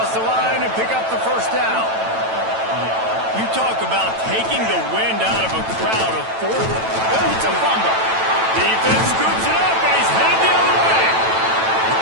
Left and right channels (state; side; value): late; left; 9.0 ms